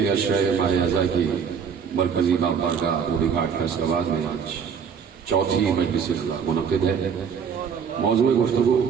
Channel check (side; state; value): left; quieter; 6.8 dB